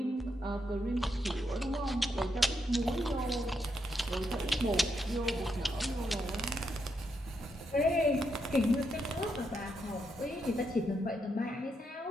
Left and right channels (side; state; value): both; normal; correlation 0.81